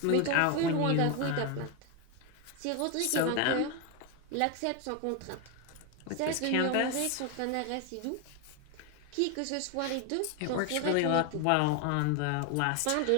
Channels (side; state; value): both; different; correlation 0.01